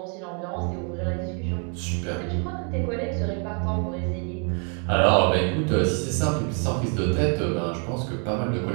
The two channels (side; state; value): left; quieter; 38.6 dB